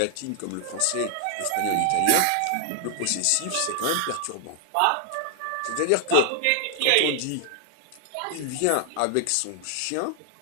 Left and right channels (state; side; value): different; both; correlation 0.00